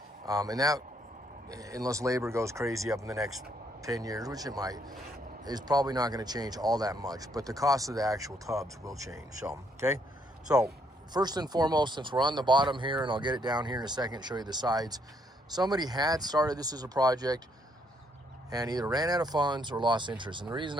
And that, unless labor goes crazy up in the next 10 years, which it might, is probably not going to change all that much, but the cost of the actual tubs will change. So, okay? So, first and foremost, since we're on the bottom here, and I'll get it down here in a second, show you the sides, somebody had started this as a project, and either ran out of funds or lost interest. And the reason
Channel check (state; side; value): normal; both; correlation 0.71